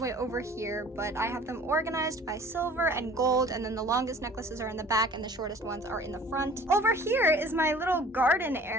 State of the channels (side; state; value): both; normal; correlation 0.48